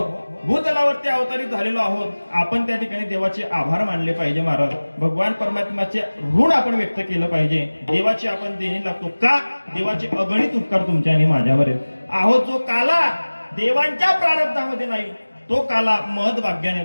भूतलावरती अवतरित झालेलो आहोत. आपण त्या ठिकाणी देवाचे आभार मानले पाहिजे महाराज. भगवान परमात्म्याचे ऋण आपण व्यक्त केलं पाहिजे. देवाची आपण देणी लागतो का? देवाचे अगणित उपकार तुमच्या आणि माझ्यावर आहेत. आहो जो काला देवांच्या प्रारब्धामध्ये नाही, तो काला महदभाग्याने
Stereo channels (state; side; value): inverted; both; correlation -1.00